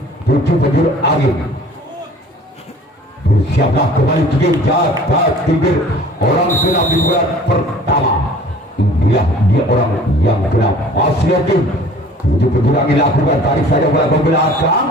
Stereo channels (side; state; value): both; normal; correlation 0.48